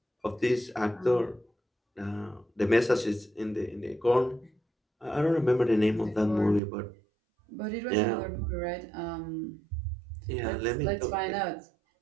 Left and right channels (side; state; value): left; drops out; at 6.6 s